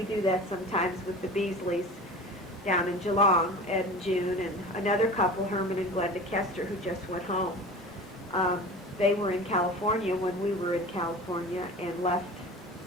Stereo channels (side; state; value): both; normal; correlation 0.36